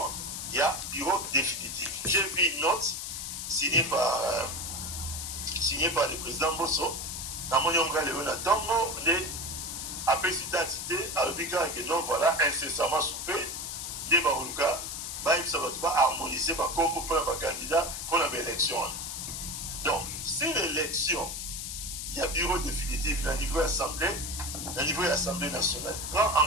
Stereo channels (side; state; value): left; noise; hiss, 5 dB below the sound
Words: il y a bureau définitif. J'ai vu une note signée par le président Bosso. Dans mon nom, Léona Tongo, les APC d'identité, à l'obligation que non, voilà, incessamment soupé, des Barouka, ça va pas harmoniser par comme pour un candidat pour l'élection. Donc, si l'élection, il y a bureau définitif au niveau Assemblée nationale, prend